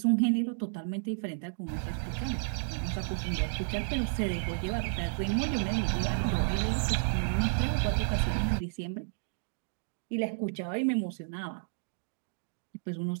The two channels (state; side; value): silent; left; digital silence